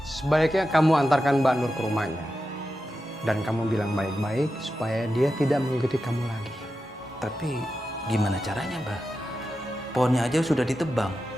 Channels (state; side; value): normal; both; correlation 0.90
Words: Sebaiknya kamu antarkan Mbak Nur ke rumahnya. Dan kamu bilang baik-baik supaya dia tidak mengikuti kamu lagi. Tapi gimana caranya, Bah? Pohonnya aja sudah ditebang.